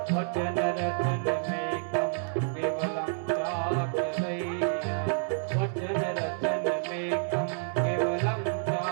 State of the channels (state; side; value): silent; left; digital silence